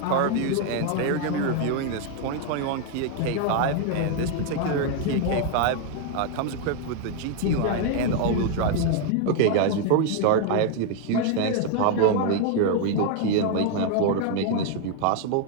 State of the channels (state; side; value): different; both; correlation 0.01